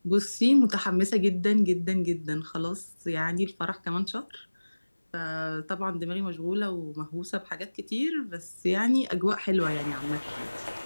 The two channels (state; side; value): inverted; both; correlation -1.00